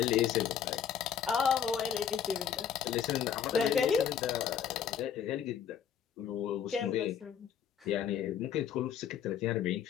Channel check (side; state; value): right; quieter; 8.4 dB